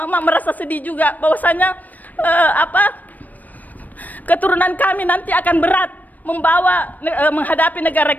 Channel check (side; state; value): right; late; 0.081 ms